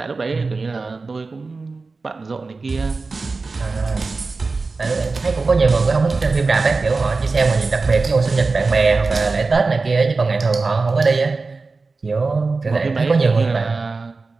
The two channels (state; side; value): quieter; left; 4.0 dB